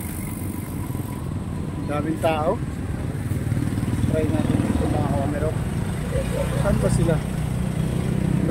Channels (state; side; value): identical; both; correlation 1.00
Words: Daming tao. Try natin dito mga kawamirok. Saan ba sila?